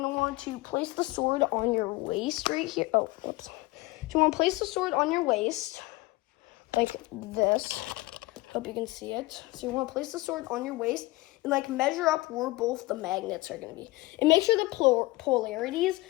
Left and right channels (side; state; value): right; quieter; 21.0 dB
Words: to want to place the sword on your waist right here. Oh, whoops. So you want to place the sword on your waist like this. Hope you can see it. So you want to place the sword on your waist and like measure up where both the magnets are going to be. And make sure the polarities,